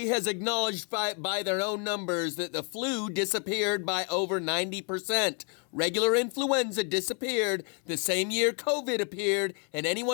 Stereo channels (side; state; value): right; quieter; 37.4 dB